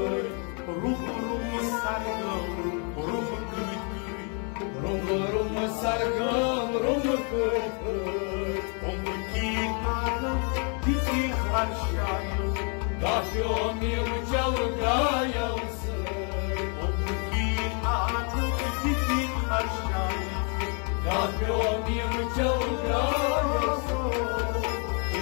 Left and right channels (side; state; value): right; quieter; 38.5 dB